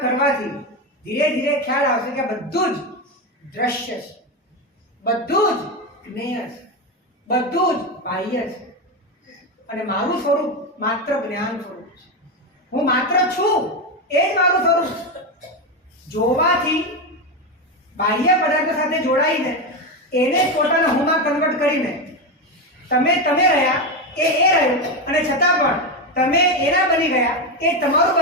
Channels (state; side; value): normal; both; correlation 0.13